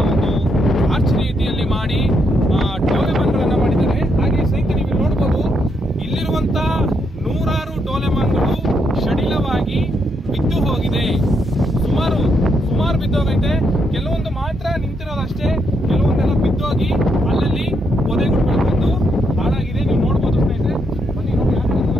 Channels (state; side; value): normal; both; correlation 0.78